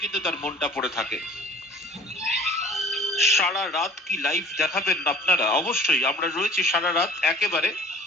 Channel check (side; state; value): both; normal; correlation 0.48